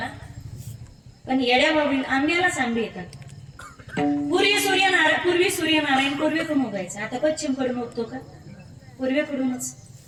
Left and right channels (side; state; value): both; identical; correlation 1.00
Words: पण येड्या बाबळी आंब्यालाच आंबे येतात. पूर्वी सूर्यनारायण पूर्वेकडून उगायचं, आता पश्चिमकडून उगतो का? पूर्वेकडूनच.